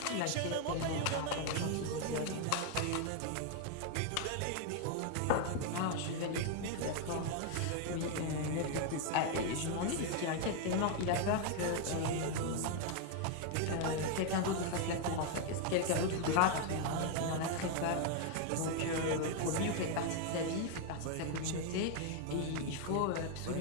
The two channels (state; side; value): different; both; correlation 0.00